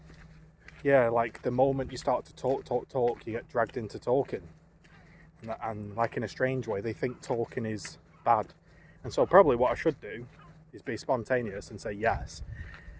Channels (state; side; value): identical; both; correlation 1.00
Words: yeah, like the moment you start to talk, you get dragged into talking, and like in a strange way, they think talking is bad. And so probably what I should do is be spontaneous and say yes,